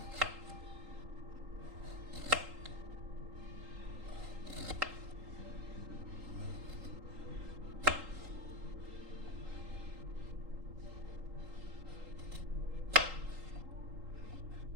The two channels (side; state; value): left; late; 3.8 ms